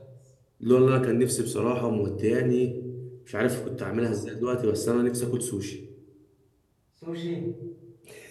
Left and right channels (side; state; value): both; identical; correlation 1.00